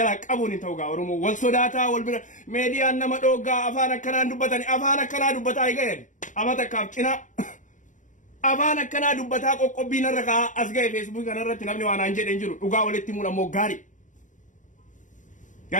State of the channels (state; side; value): late; right; 0.37 ms